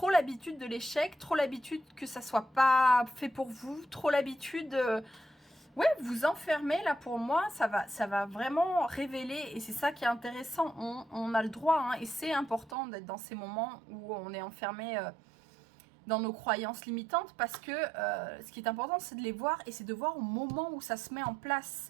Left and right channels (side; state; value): left; drops out; at 12.8 s